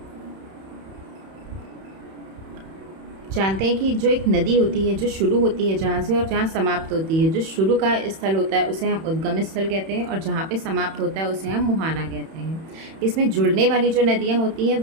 जानते हैं कि जो एक नदी होती है जो शुरू होती है जहाँ से और जहाँ समाप्त होती है, जो शुरू का स्थल होता है उसे हम उद्गम स्थल कहते हैं और जहाँ पे समाप्त होता है उसे हम मुहाना कहते हैं। इसमें जुड़ने वाली जो नदियाँ होती हैं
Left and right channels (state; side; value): late; left; 31 ms